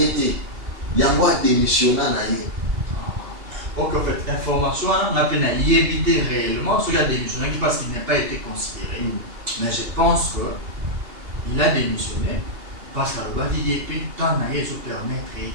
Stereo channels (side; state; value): left; late; 2.8 ms